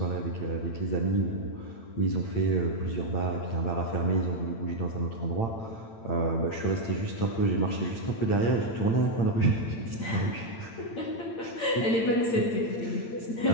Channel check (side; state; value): right; late; 8.9 ms